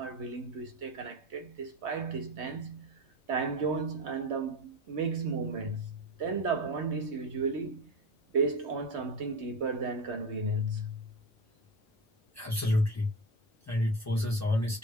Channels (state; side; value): normal; both; correlation 0.25